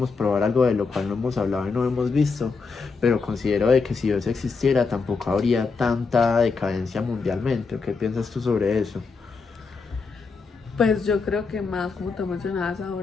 probar algo de lo cual no hemos hablado y no hemos visto, pero considero de que si Dios existiera tampoco habría tanta decadencia mundialmente. ¿Qué piensas tú sobre eso? Pues yo creo que más, como tú mencionabas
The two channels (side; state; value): right; quieter; 4.7 dB